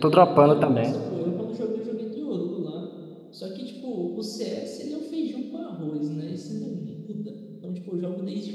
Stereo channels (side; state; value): both; identical; correlation 1.00